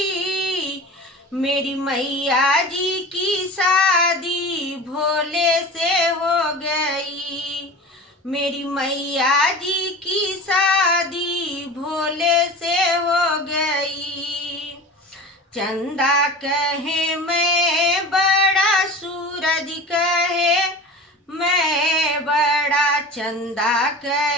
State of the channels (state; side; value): normal; both; correlation 0.35